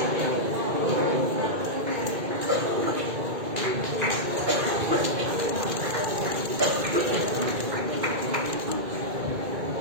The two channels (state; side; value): late; left; 2.2 ms